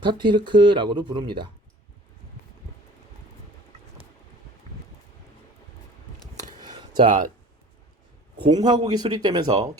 부릅니다. 자, 공화국이 수립되면서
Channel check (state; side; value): normal; both; correlation 0.45